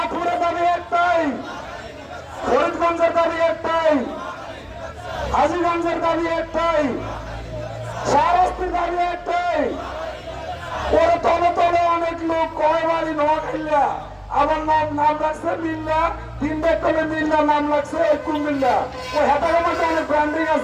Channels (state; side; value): identical; both; correlation 1.00